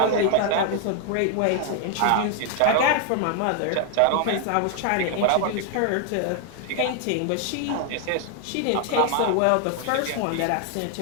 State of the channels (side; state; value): both; different; correlation 0.00